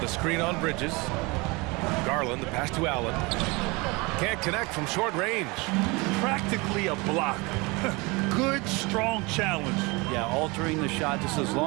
a screen on Bridges. Garland, the pass to Allen. Can't connect from short range. Practically a block. Good, strong challenge. Yeah, altering the shot just as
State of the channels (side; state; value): left; quieter; 25.8 dB